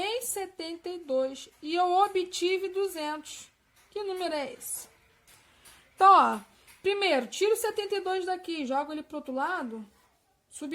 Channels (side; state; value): both; identical; correlation 1.00